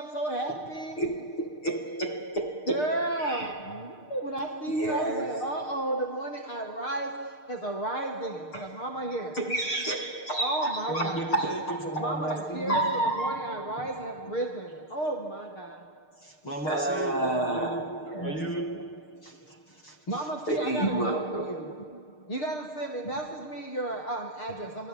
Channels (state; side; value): late; right; 6.6 ms